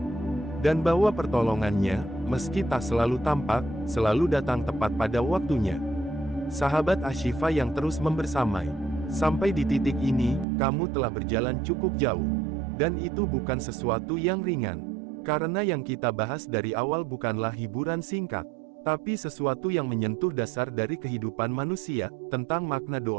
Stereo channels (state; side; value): drops out; left; at 10.5 s